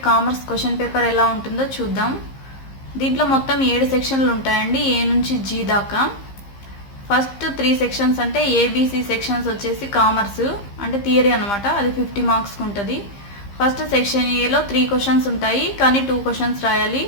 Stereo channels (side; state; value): right; late; 15 ms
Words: commerce question paper ఎలా ఉంటుందో చూద్దాం. దీంట్లో మొత్తం 7 సెక్షన్లు ఉంటాయండి, ఏ నుంచి జీ దాకా. ఫస్ట్ 3 సెక్షన్స్ అంటే ఏబిసి సెక్షన్స్ వచ్చేసి కామర్స్ అంటే థియరీ అనమాట, అది 50 మార్క్స్కి ఉంటుంది. ఫస్ట్ సెక్షన్ ఏలో 3 క్వశ్చన్స్ ఉంటాయి, కానీ 2 క్వశ్చన్స్ రాయాలి.